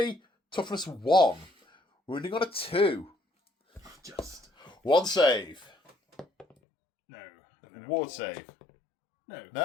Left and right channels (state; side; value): drops out; right; at 6.6 s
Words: toughness 1. Wounding on a 2. Just 1 save. no. And then a Ward ward. save. No.